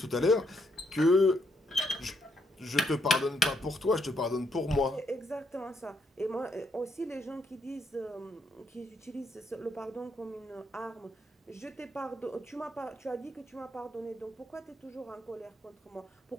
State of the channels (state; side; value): normal; both; correlation 0.75